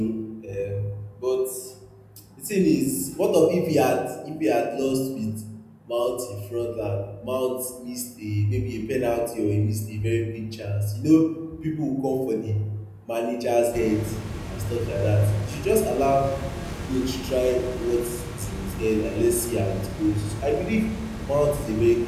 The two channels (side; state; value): both; identical; correlation 1.00